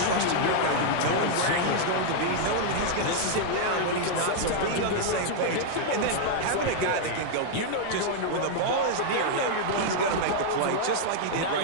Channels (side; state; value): both; different; correlation -0.01